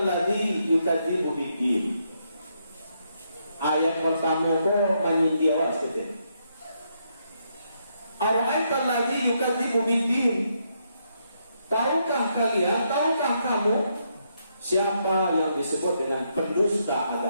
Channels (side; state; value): both; inverted; correlation -0.77